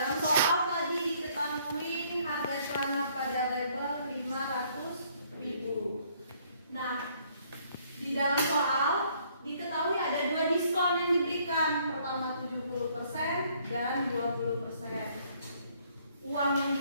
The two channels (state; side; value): inverted; both; correlation -0.64